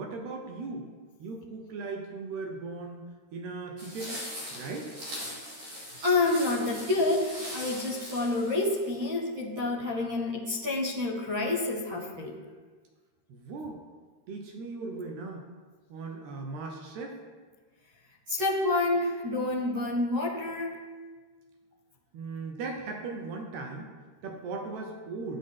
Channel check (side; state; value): left; late; 13 ms